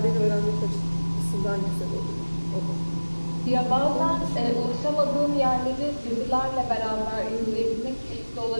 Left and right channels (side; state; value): both; inverted; correlation -1.00